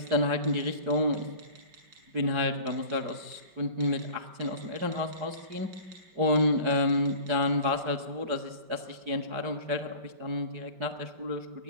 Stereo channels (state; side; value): late; left; 5.2 ms